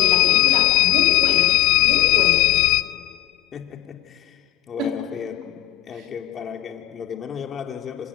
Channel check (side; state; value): right; quieter; 14.0 dB